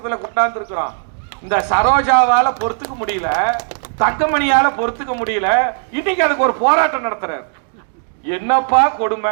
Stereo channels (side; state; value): left; silent; digital silence